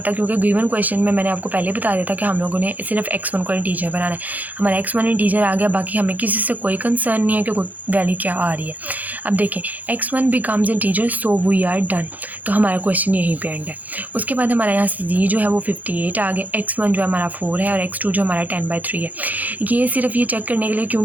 क्योंकि गिवन क्वेश्चन में मैंने आपको पहले बता दिया था कि हम लोगों ने सिर्फ x1 को इंटीजर बनाना है। हमारा x1 इंटीजर आ गया, बाकी हमें किसी से कोई कंसर्न नहीं है कि वैल्यू क्या आ रही है। अब देखें x1 becomes integer so we are done, तो हमारा क्वेश्चन यहीं पे एंड है। उसके बाद हमारे यहाँ z जो है वो 58 आ गया, x1 जो हमारा 4 है और x2 जो हमारा 10/3 है। ये सिर्फ ये चेक करने के लिए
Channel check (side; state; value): left; late; 0.081 ms